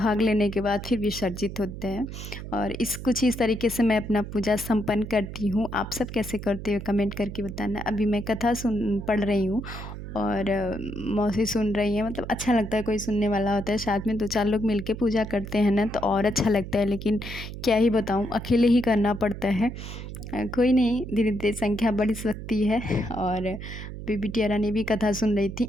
लेने के बाद फिर विसर्जित होते हैं। और कुछ इस तरीके से मैं अपना पूजा संपन्न करती हूँ। आप सब कैसे करते हो कमेंट करके बताना। अभी मैं कथा पढ़ रही हूँ और मौसी सुन रही हैं। मतलब अच्छा लगता है, कोई सुनने वाला होता है, साथ में 2-4 लोग मिलके पूजा करते हैं ना तो और अच्छा लगता है। लेकिन क्या ही बताऊँ, अकेले ही करना पड़ता है। कोई नहीं, धीरे धीरे संख्या बढ़ सकती है। और अभी बिटिया रानी भी कथा सुन रही थी,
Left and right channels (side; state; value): right; noise; hum, 9 dB below the sound